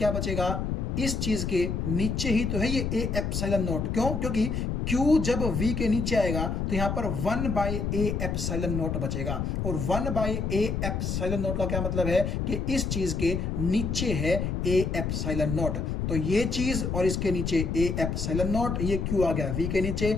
बचेगा, इस चीज के नीचे ही तो है ये A एप्सिलॉन नॉट। क्यों, क्योंकि Q जब V के नीचे आएगा तो यहां पर 1 बाई A एप्सिलॉन नॉट बचेगा, और 1 बाई A एप्सिलॉन नॉट का क्या मतलब है कि इस चीज के नीचे है A एप्सिलॉन नॉट। तो ये चीज और इसके नीचे A एप्सिलॉन नॉट, ये Q आ गया V के नीचे,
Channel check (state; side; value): noise; left; rumble, 1 dB below the sound